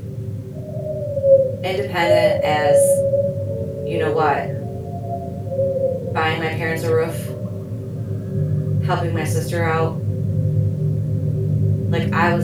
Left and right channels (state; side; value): identical; both; correlation 1.00